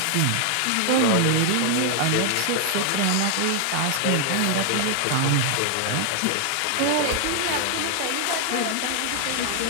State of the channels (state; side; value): different; both; correlation 0.00